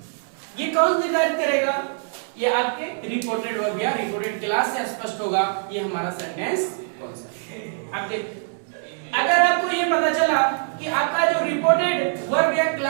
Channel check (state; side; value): silent; left; 61 dB below the other